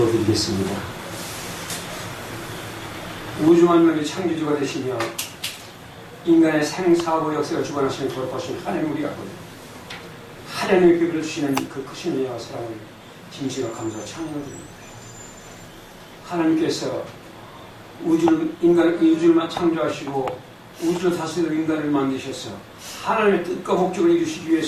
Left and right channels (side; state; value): both; identical; correlation 1.00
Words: 우주 만물의 창조주가 되시며 인간의 생사고 역사를 주관하시는 돌보신 하나님 우리가 보니 하나님의 기별을 주시는 그 크신 은혜와 사랑을 진심과 감사와 찬양드립니다. 하나님께서 우주를 창조하시고 우주를 다스리는 인간을 만드셔서 하나님의 뜻과 목적을 이루시기